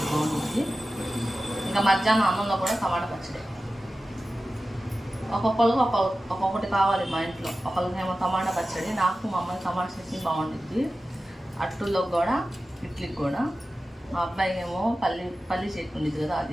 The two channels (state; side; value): normal; both; correlation 0.94